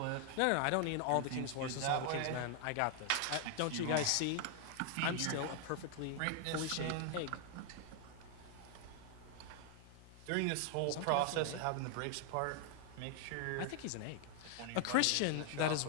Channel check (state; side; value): different; both; correlation 0.00